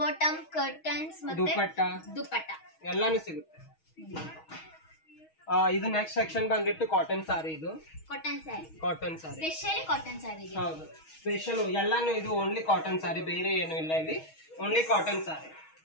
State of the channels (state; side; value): late; right; 6.3 ms